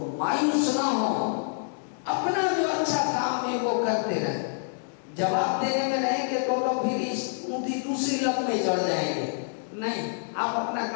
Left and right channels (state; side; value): silent; right; digital silence